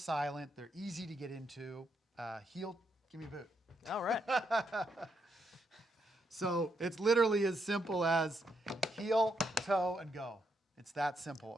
They're easy to get into. Heel, give me a boot. All right. So it's literally as simple as heel, toe, and go. It's that simple.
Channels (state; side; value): normal; both; correlation 0.78